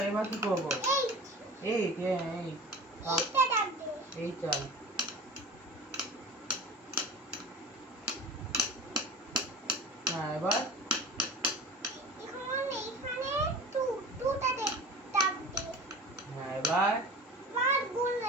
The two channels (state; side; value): normal; both; correlation 0.36